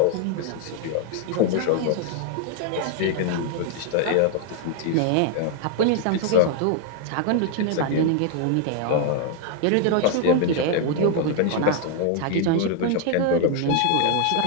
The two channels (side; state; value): both; different; correlation 0.00